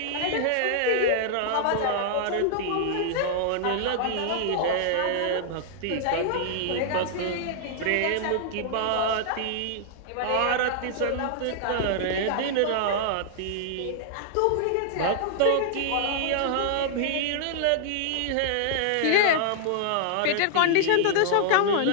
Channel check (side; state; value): both; different; correlation -0.01